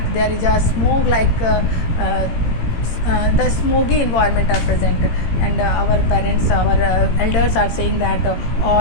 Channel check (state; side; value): late; right; 18 ms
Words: there is a smoke like the smoky environment are present, and our parents, our elders are saying that